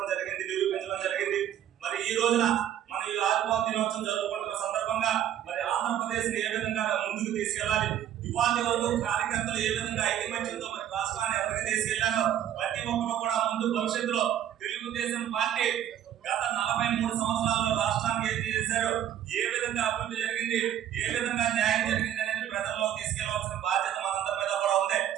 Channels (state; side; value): quieter; left; 10.8 dB